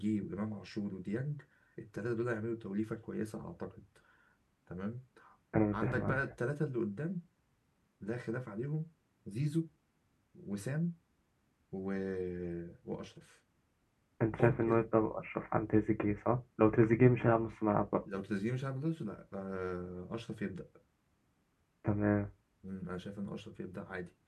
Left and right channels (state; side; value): identical; both; correlation 1.00